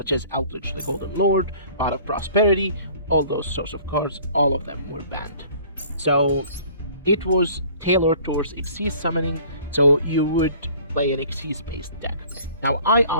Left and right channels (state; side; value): inverted; both; correlation -0.51